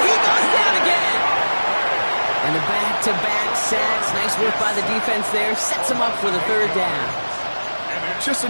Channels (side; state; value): both; inverted; correlation -1.00